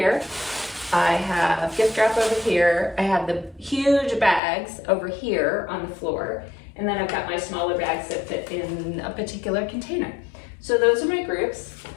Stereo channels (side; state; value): right; drops out; at 4.4 s